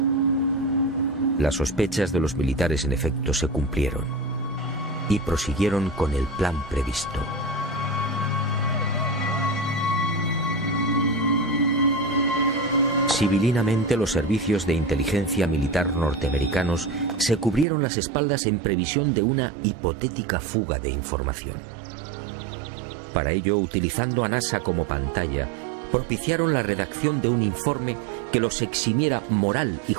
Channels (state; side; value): drops out; left; at 17.7 s